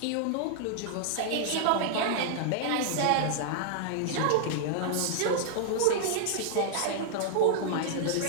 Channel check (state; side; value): different; both; correlation 0.00